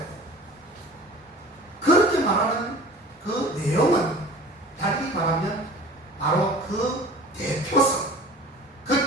그렇게 말하는 그 내용은 달리 말하면 바로 그 대표성,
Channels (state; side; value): normal; both; correlation 0.43